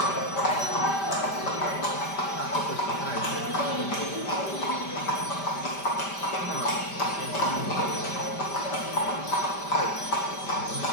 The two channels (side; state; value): right; late; 5.1 ms